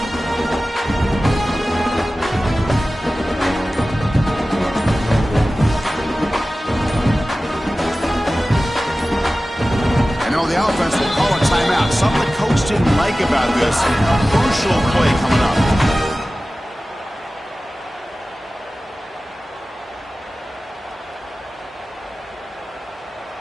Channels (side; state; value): both; normal; correlation 0.96